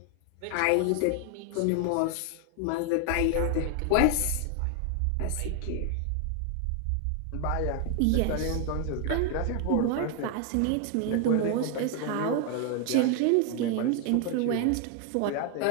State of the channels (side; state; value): both; different; correlation 0.01